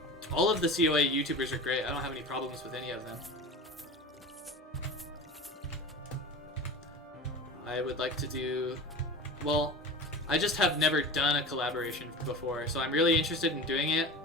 all of the COA YouTubers are great. I don't have any problems with any of them. I would like to do... Well, I just have never done a collaboration before, so I'm really interested in doing it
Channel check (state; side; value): normal; both; correlation 0.33